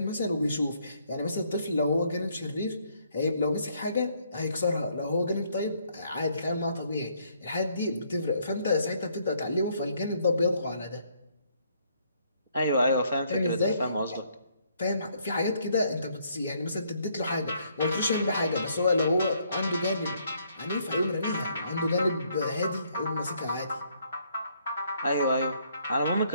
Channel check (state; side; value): inverted; both; correlation -0.68